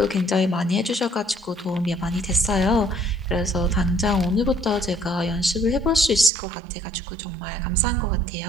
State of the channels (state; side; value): drops out; left; at 6.3 s